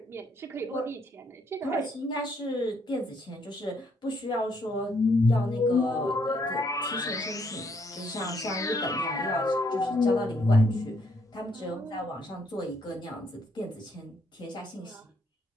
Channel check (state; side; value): normal; both; correlation 0.71